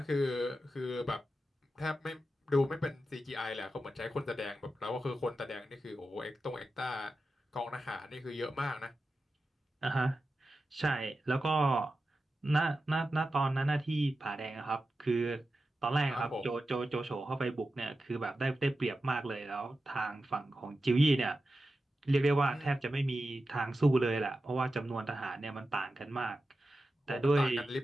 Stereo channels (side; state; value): both; normal; correlation 0.91